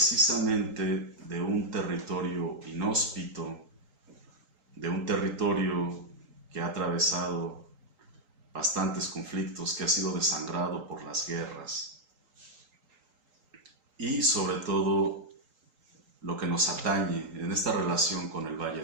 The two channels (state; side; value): late; left; 3.8 ms